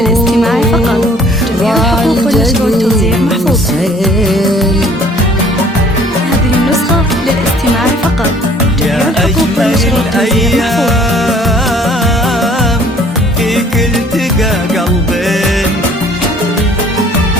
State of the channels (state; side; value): normal; both; correlation 0.56